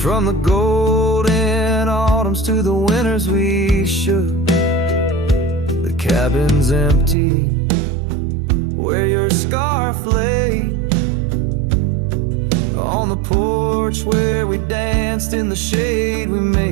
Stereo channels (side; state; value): left; drops out; at 7.2 s